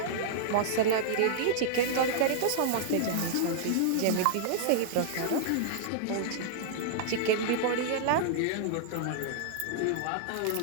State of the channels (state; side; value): different; both; correlation -0.01